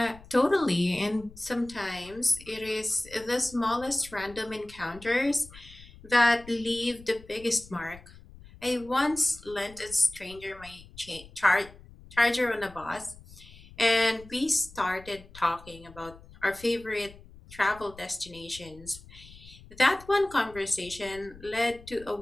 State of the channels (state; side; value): noise; left; rumble, 20 dB below the sound